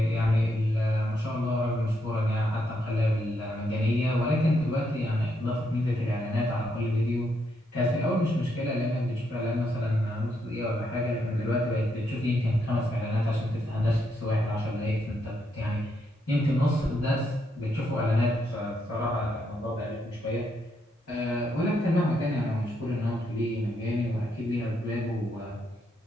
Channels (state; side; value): normal; both; correlation 0.78